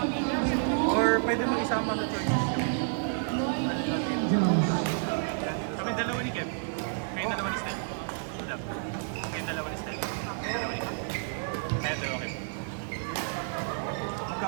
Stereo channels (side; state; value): left; silent; digital silence